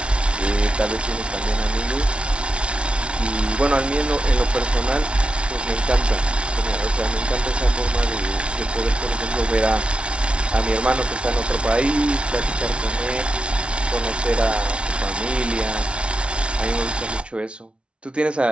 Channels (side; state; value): left; late; 0.059 ms